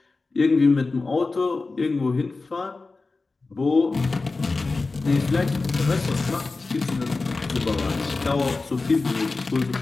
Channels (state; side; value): quieter; right; 3.7 dB